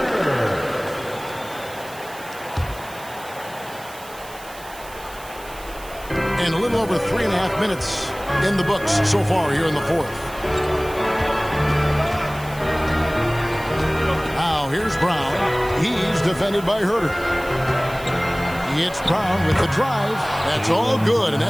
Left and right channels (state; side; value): noise; right; hiss, 18 dB below the sound